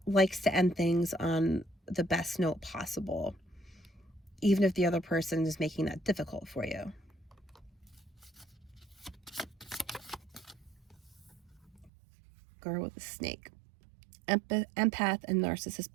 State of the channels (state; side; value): drops out; left; at 11.9 s